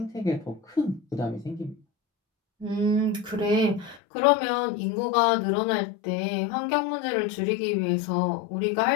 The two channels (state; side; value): drops out; right; at 4.0 s